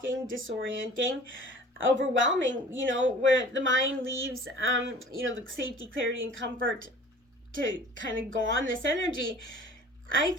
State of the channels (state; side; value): normal; both; correlation 0.46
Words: disorienting, overwhelming, where the mind leaves, the safety, clarity, and comfort to kind of go on this energy. I